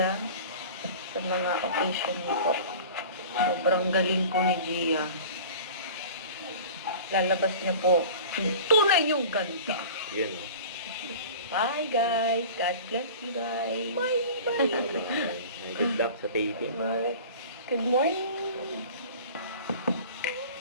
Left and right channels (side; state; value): both; inverted; correlation -0.39